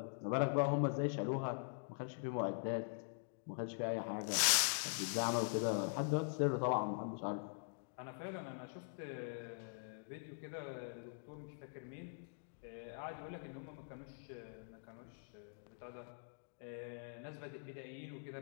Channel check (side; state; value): right; silent; digital silence